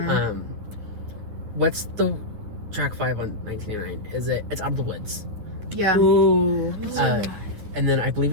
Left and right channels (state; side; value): late; left; 10 ms